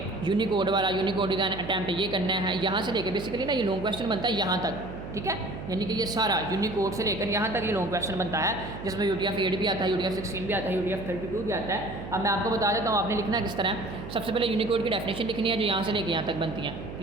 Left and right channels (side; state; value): right; noise; hum, 10 dB below the sound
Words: यूनिकोड वाला यूनिकोड डिज़ाइन अटैम्प्ट ये करना है, यहाँ से लेकर बेसिकली ना ये लॉन्ग क्वेश्चन बनता है यहाँ तक, ठीक है, यानी कि ये सारा यूनिकोड से लेकर यहाँ तक ये लॉन्ग क्वेश्चन बनता है, जिसमें UTF-8 भी आता है, UTF-16 भी आता है, UTF-32 भी आता है। अब मैं आपको बता देता हूँ आपने लिखना किस तरह। सबसे पहले यूनिकोड की डेफिनेशन लिखनी है जो यहाँ से लेकर यहाँ तक बनती है,